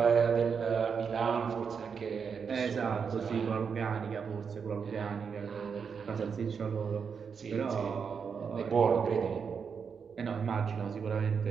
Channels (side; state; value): left; quieter; 6.2 dB